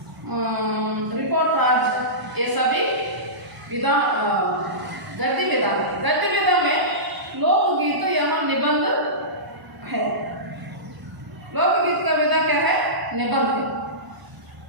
रिपोर्टाज, ये सभी विधा गद्य विधा है. गद्य विधा में लोकगीत यहाँ निबंध है. लोकगीत का विधा क्या है? निबंध है.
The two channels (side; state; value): left; late; 1.0 ms